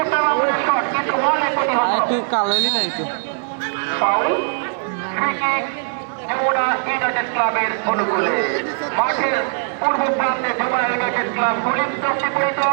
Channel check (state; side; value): silent; left; 66 dB below the other